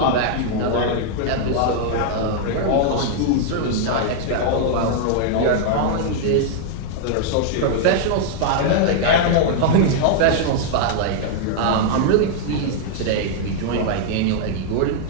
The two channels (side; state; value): both; different; correlation -0.01